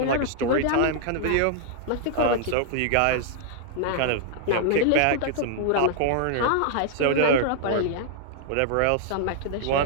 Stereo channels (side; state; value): both; different; correlation -0.01